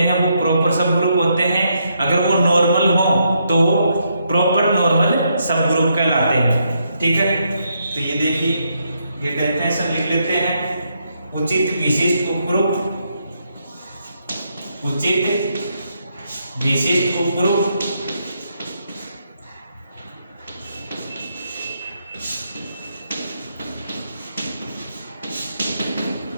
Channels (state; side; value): inverted; both; correlation -0.77